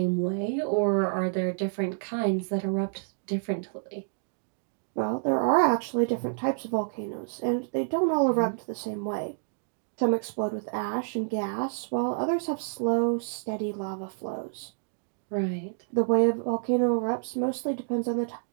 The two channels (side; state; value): left; silent; digital silence